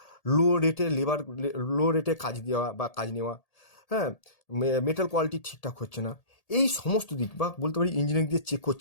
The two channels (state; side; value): late; right; 1.8 ms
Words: লো রেটে কাজ দেওয়া বা কাজ নেওয়া, হ্যাঁ, মেটাল কোয়ালিটি ঠিকঠাক হচ্ছে না, এই সমস্ত দিক বা বলতে পারি ইঞ্জিনিয়ারিং দিয়ে চেক